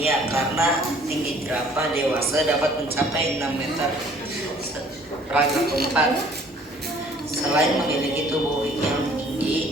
karena tinggi jerapah dewasa dapat mencapai 6 meter. Paragraf keempat, selain memiliki tubuh yang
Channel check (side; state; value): both; normal; correlation 0.56